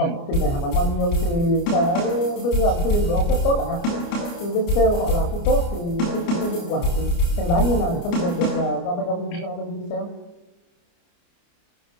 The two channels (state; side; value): late; right; 29 ms